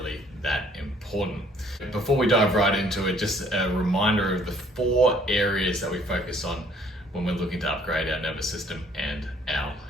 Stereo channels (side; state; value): both; normal; correlation 0.60